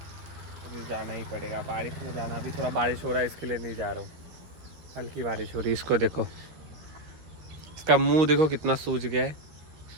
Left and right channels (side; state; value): left; late; 13 ms